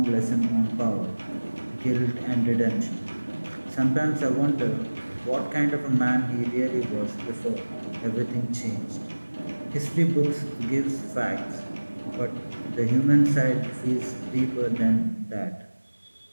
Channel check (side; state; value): both; inverted; correlation -1.00